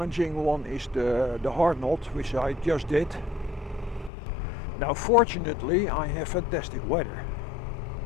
one is the Hard Knot, which I just did. Now fortunately I have fantastic weather.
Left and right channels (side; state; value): right; drops out; at 4.1 s